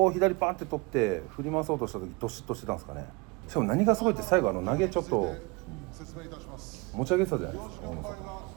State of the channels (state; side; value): quieter; left; 26.6 dB